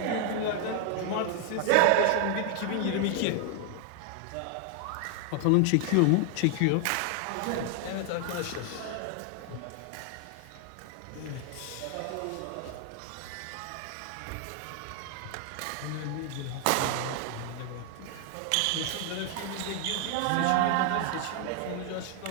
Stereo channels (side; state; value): both; different; correlation 0.00